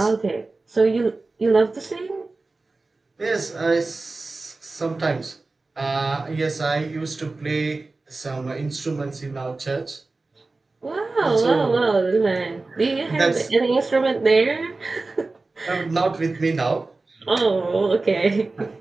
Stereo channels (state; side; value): quieter; left; 3.5 dB